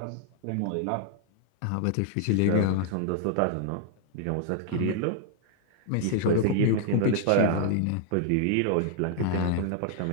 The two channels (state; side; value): different; both; correlation -0.01